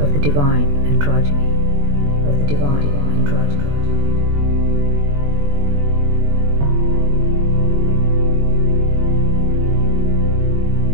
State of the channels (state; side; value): late; left; 21 ms